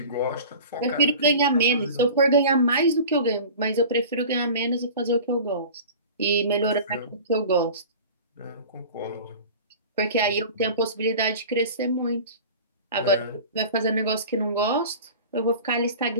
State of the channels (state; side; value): inverted; both; correlation -0.38